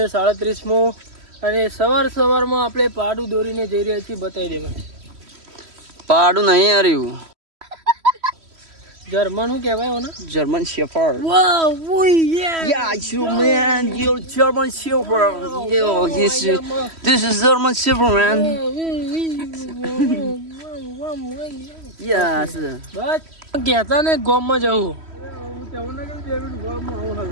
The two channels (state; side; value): late; left; 3.1 ms